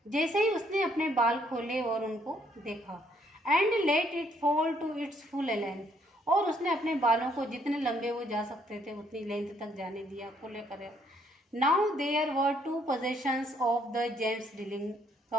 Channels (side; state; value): both; normal; correlation 0.68